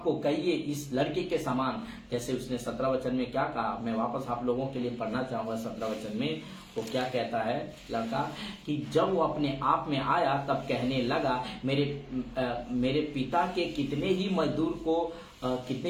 को कहिए इस लड़के के समान, जैसे उसने 17 वचन में क्या कहा। मैं वापस आप लोगों के लिए पढ़ना चाहूंगा 17 वचन में वो क्या कहता है लड़का, कि जब वो अपने आप में आया तब कहने लगा, मेरे पिता के कितने ही मजदूर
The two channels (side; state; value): both; identical; correlation 1.00